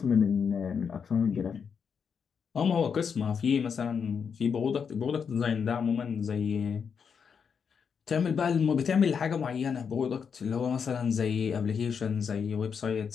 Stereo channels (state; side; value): quieter; right; 6.5 dB